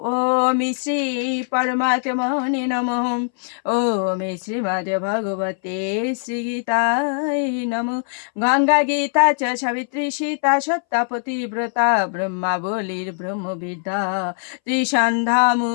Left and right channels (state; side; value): silent; right; 63 dB below the other